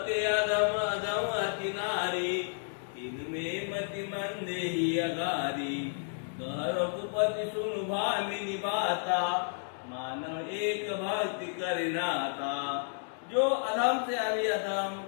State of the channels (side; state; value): right; silent; digital silence